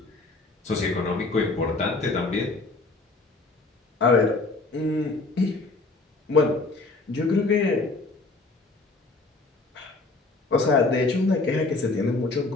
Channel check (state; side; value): quieter; right; 3.4 dB